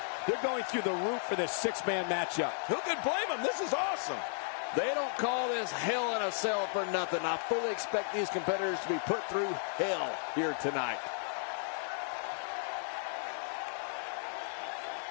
They're going through the roof for this 6-man matchup. Who could blame them? This is awesome. They don't call this hell in a cell for nothing. I fully expect these competitors to be put through hell here tonight.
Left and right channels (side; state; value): right; silent; digital silence